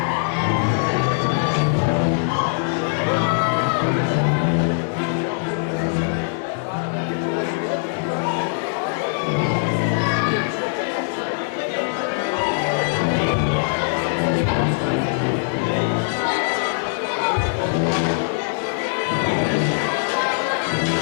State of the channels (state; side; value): silent; right; 64 dB below the other